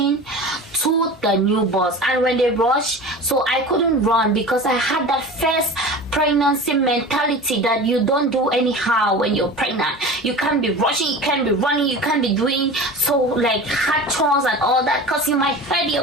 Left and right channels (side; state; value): both; normal; correlation 0.34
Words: to the new bus. And when they rushed, so I couldn't run, because I had that first pregnancy mentality that you don't do anyhow when you're pregnant. You can't be rushing, you can't be running, you can't be doing so like hard chores and all that, because you might hurt your